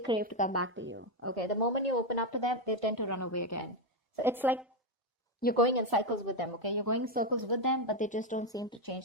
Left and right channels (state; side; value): normal; both; correlation 0.07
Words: to come back to you. Okay? The moment you open up to them, they tend to run away again. So it's like you're going in cycles with them, okay? You're going in circles with them, but they just don't seem to